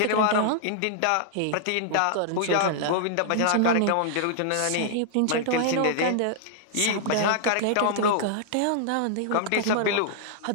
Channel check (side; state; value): both; different; correlation -0.01